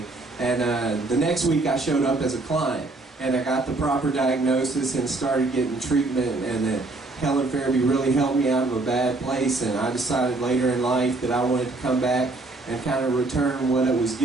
And the next week I showed up as a client, and I got the proper diagnosis and started getting treatment, and Helen Farabee really helped me out of a bad place, and I decided later in life that I wanted to come back and kind of return what it was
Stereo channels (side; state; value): left; quieter; 3.2 dB